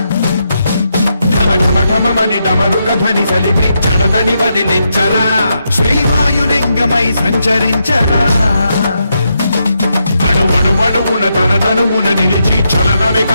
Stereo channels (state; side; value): inverted; both; correlation -0.82